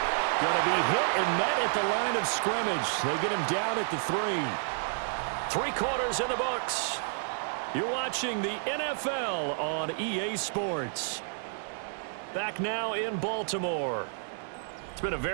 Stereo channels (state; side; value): silent; left; digital silence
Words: going to be hit and met at the line of scrimmage. They get him down at the 3. 3 quarters in the books. You're watching the NFL on EA Sports. Back now in Baltimore. It's been a